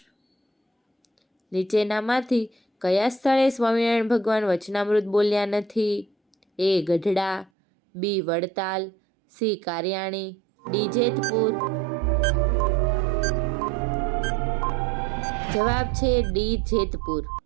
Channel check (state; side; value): drops out; left; at 7.5 s